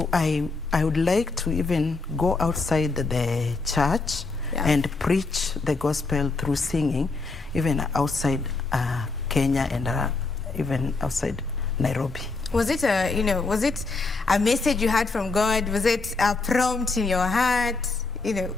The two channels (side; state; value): right; quieter; 3.8 dB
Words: I would like to even go outside the church and preach the gospel through singing, even outside Kenya and even outside Nairobi. Was it a message you had from God? Was it a prompt in your heart? You know,